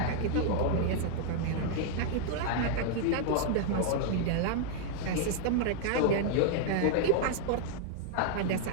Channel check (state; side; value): different; both; correlation 0.00